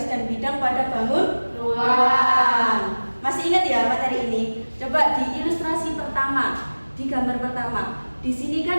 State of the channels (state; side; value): inverted; both; correlation -1.00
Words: dan bidang pada bangun ruang. Masih ingat ya materi ini? Coba di ilustrasi pertama, di gambar pertama. Di sini